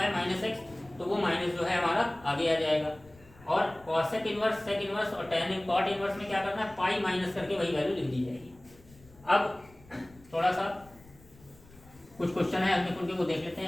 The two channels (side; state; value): left; noise; rumble, 25 dB below the sound